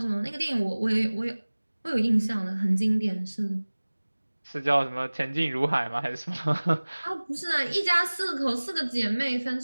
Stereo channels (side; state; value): both; inverted; correlation -1.00